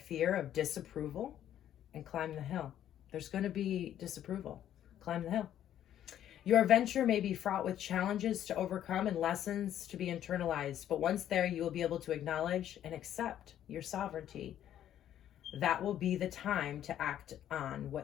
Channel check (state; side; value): quieter; right; 11.1 dB